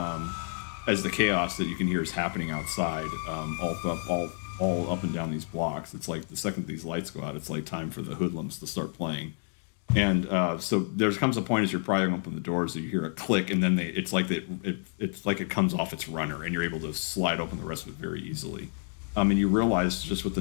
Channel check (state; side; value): silent; right; 58 dB below the other